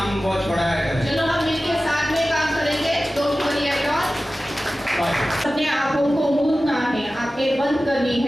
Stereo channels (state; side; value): normal; both; correlation 0.96